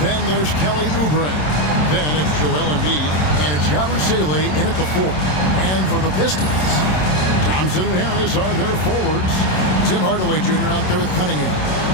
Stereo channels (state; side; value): late; right; 27 ms